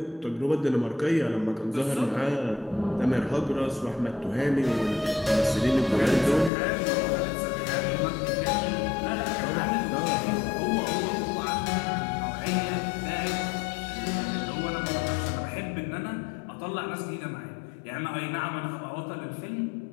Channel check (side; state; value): right; drops out; at 6.5 s